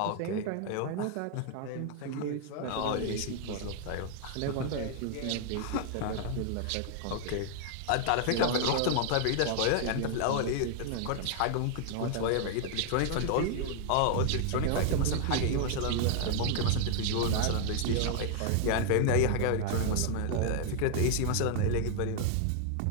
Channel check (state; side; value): different; both; correlation 0.00